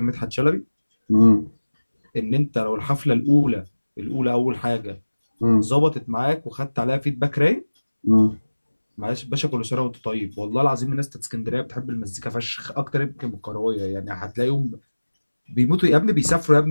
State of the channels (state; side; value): inverted; both; correlation -1.00